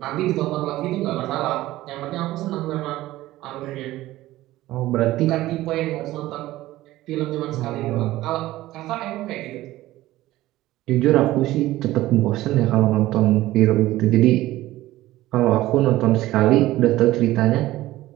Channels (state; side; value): quieter; left; 16.3 dB